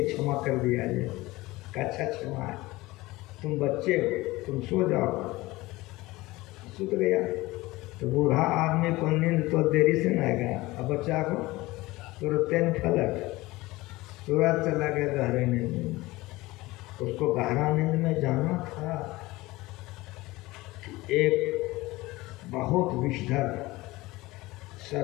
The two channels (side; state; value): right; quieter; 20.0 dB